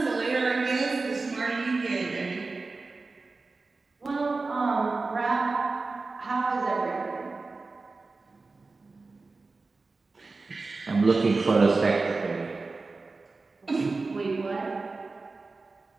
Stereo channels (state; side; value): quieter; left; 3.8 dB